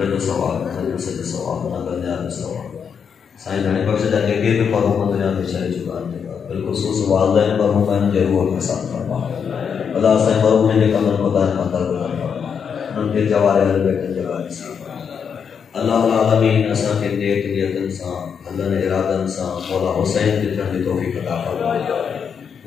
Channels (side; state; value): right; quieter; 6.9 dB